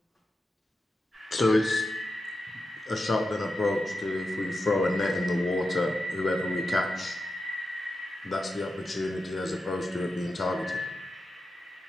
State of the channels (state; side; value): normal; both; correlation 0.89